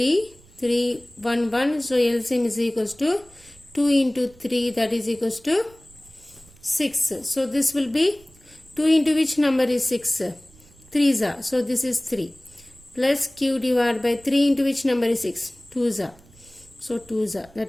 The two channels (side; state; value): right; noise; rumble, 26 dB below the sound